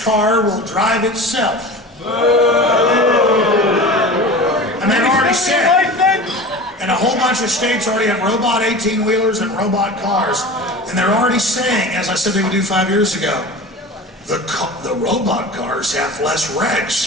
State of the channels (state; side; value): normal; both; correlation 0.34